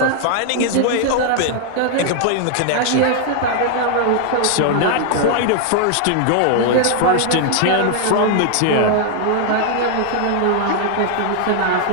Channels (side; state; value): both; different; correlation 0.00